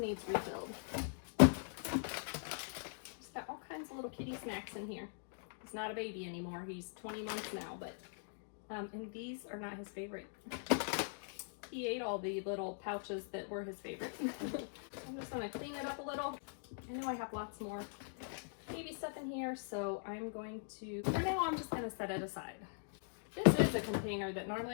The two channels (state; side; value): silent; right; digital silence